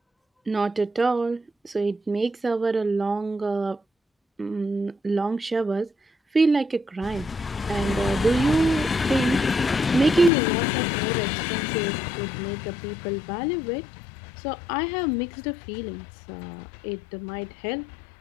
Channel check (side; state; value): right; drops out; at 10.3 s